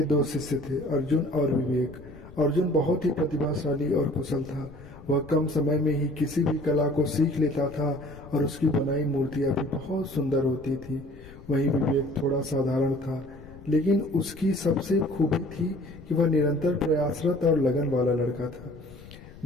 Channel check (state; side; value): noise; left; rumble, 18 dB below the sound